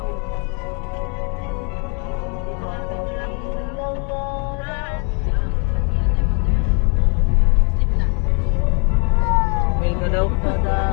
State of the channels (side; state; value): right; quieter; 33.9 dB